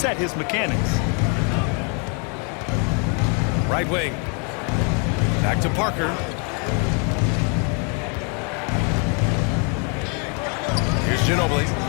his mechanics. Right wing. Back to Parker. Here's Ginobili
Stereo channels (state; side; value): quieter; right; 36.9 dB